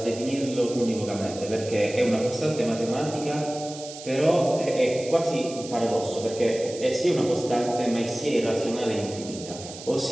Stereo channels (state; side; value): noise; right; hiss, 14 dB below the sound